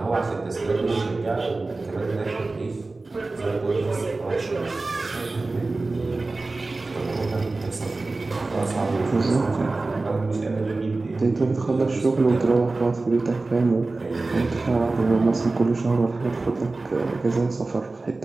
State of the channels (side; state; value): left; quieter; 3.4 dB